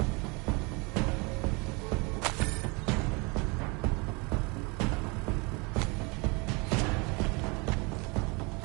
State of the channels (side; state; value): left; quieter; 29.0 dB